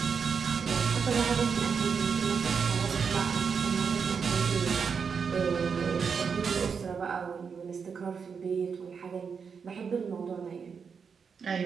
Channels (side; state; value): left; quieter; 6.1 dB